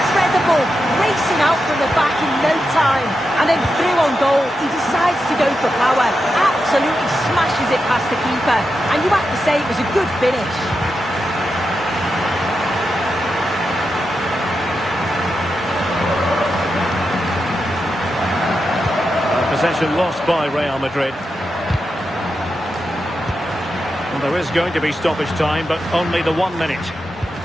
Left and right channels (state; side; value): normal; both; correlation 0.88